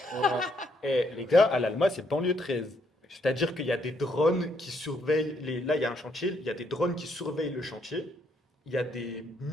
pas? Eh, les gars, à l'Alma, c'est Banlieue 13. C'est-à-dire qu'il y a des drones qui surveillent Là, il y a un chantier, il y a des drones qui surveillent le chantier. Il y a des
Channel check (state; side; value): normal; both; correlation 0.73